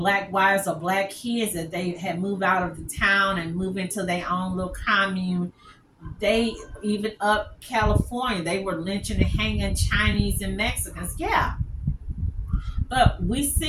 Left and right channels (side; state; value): both; identical; correlation 1.00